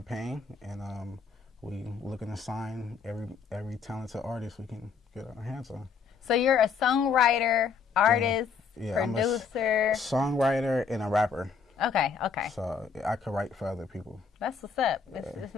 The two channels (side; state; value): right; quieter; 5.7 dB